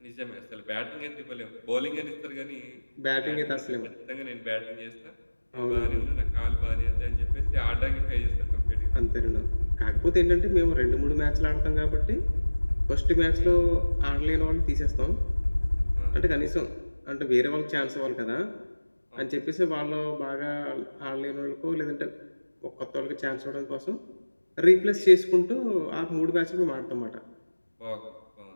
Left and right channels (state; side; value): inverted; both; correlation -1.00